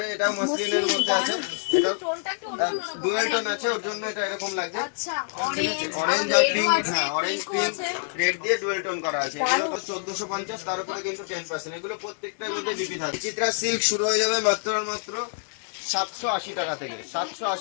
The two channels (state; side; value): silent; right; 61 dB below the other